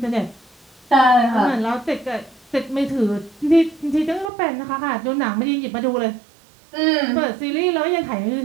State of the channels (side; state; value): left; drops out; at 4.3 s